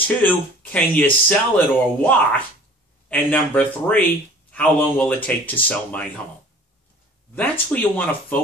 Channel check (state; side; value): normal; both; correlation 0.47